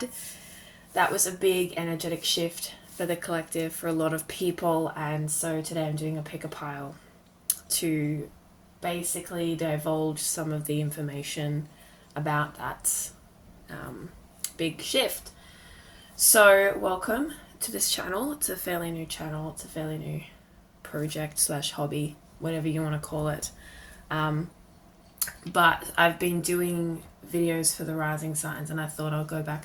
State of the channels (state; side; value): identical; both; correlation 1.00